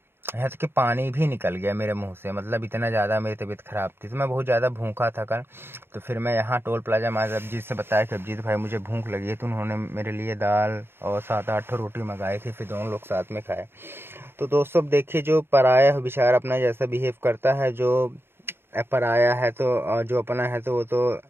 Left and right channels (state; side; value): late; left; 0.11 ms